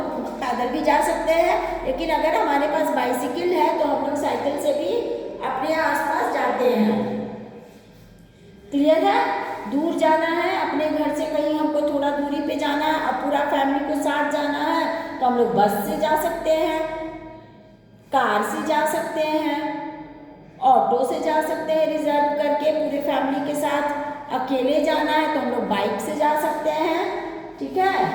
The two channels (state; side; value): identical; both; correlation 1.00